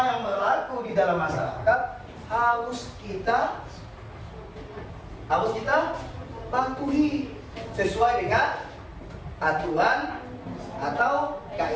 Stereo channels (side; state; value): both; identical; correlation 1.00